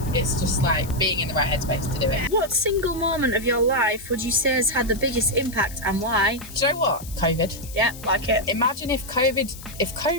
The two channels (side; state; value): left; noise; hiss, 16 dB below the sound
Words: it's just like being in the right headspace to do it. What single moment of your life would you say has had the biggest impact, and why? Do you know what? COVID. Yeah, like it. Imagine if